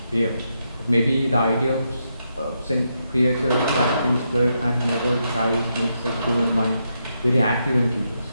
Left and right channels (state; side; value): inverted; both; correlation -0.82